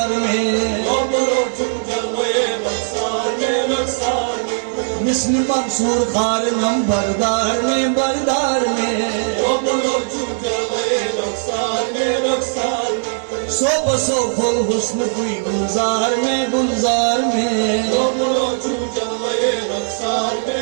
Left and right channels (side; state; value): left; silent; 67 dB below the other